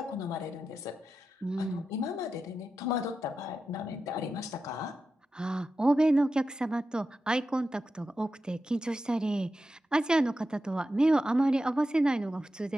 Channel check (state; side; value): normal; both; correlation 0.90